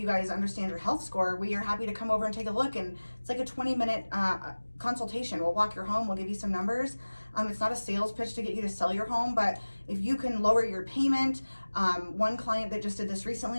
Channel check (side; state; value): both; inverted; correlation -1.00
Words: guys understand your health score. We are happy to come over and take a look, and it's like a 20-minute consultation. We'll walk your home, we'll give you some numbers. It's not a sales pitch to get you to sell your home, but if you can lower your payment, one client that just did this